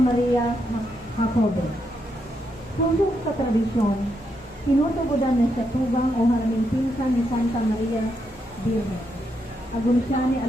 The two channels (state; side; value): normal; both; correlation 0.80